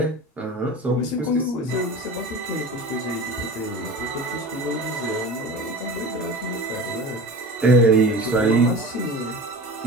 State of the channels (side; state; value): both; normal; correlation 0.35